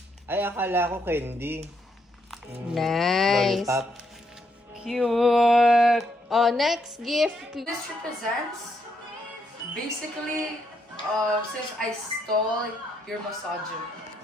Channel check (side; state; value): both; normal; correlation 0.76